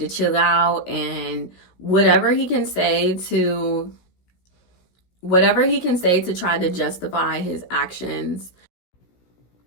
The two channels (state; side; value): late; right; 17 ms